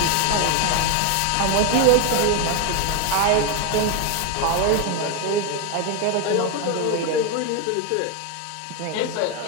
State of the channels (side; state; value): both; different; correlation 0.01